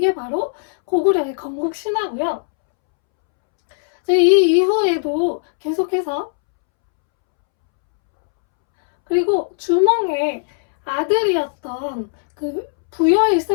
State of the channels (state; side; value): silent; right; 67 dB below the other